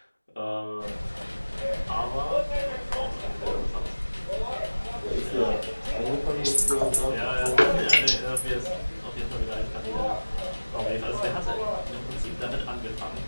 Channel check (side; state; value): both; inverted; correlation -1.00